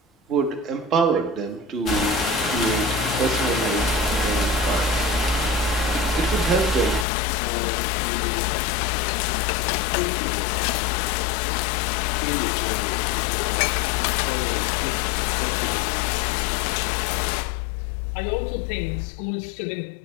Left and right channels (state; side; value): drops out; right; at 7.1 s